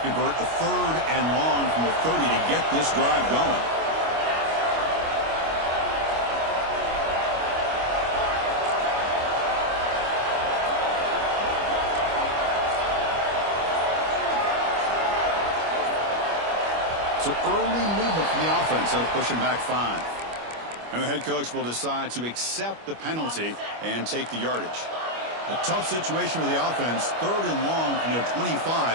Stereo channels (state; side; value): late; left; 25 ms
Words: a 3rd and long from the 30 to get this drive going. So early movement from the offense. That'll push him back 5. And the head coach will decide to accept the penalty and take the yardage. A tough situation for the offense. 3rd and long from their